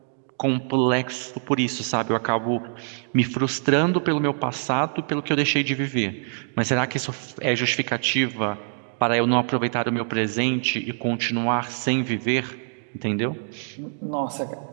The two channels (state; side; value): silent; left; digital silence